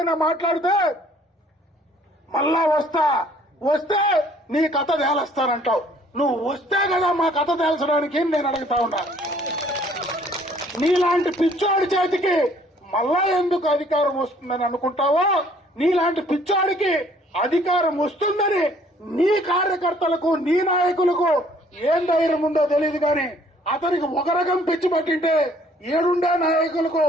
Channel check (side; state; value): both; normal; correlation 0.59